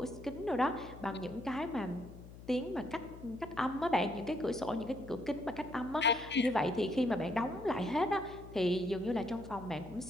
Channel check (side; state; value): left; noise; hum, 16 dB below the sound